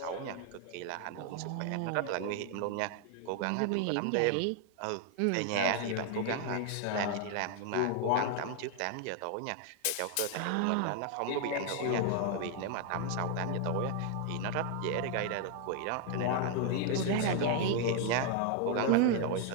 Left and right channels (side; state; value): both; different; correlation 0.00